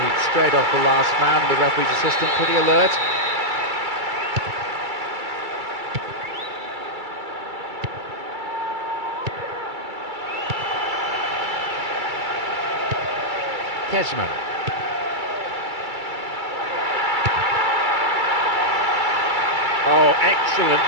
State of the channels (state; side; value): late; left; 2.3 ms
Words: straight off the last man, the referee's assistant pretty alert. Kesman. Oh, excellent